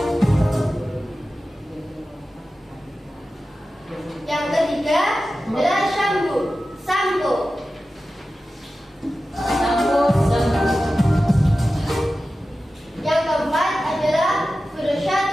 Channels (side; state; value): both; normal; correlation 0.94